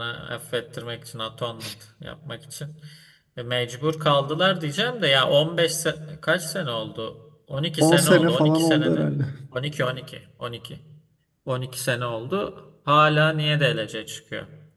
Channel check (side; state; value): both; identical; correlation 1.00